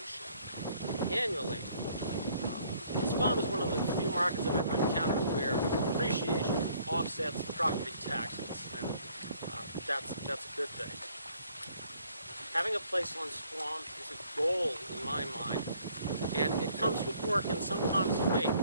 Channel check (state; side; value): inverted; both; correlation -0.61